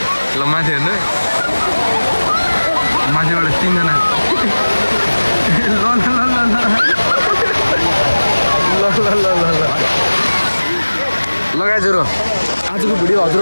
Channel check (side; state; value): both; inverted; correlation -1.00